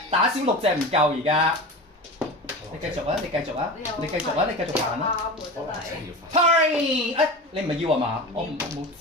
打少6隻唔夠而家。你繼續啊！你繼續啊！你繼續啊！你繼續行啦！啱喎真係。 Party！哎，你唔係要啊嘛？我冇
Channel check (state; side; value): normal; both; correlation 0.30